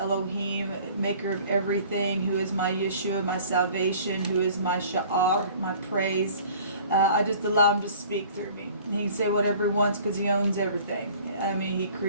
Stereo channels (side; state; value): both; inverted; correlation -0.49